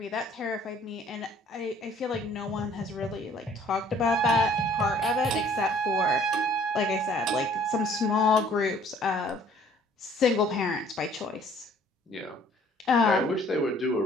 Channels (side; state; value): both; normal; correlation 0.57